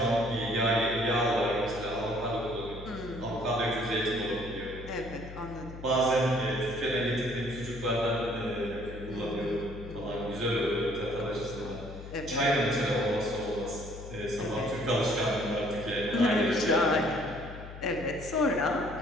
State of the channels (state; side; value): noise; left; hum, 12 dB below the sound